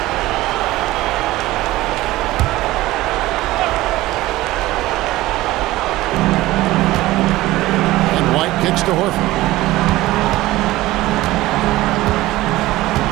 And White kicks to Horford.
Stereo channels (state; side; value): quieter; left; 17.5 dB